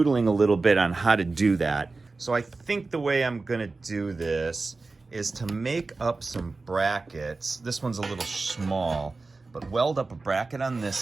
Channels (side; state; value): left; quieter; 3.7 dB